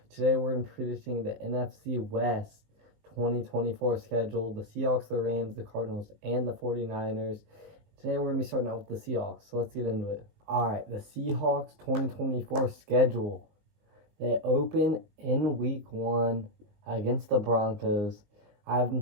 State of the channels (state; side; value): late; left; 19 ms